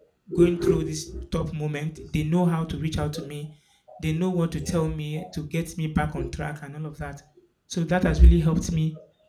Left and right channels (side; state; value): both; identical; correlation 1.00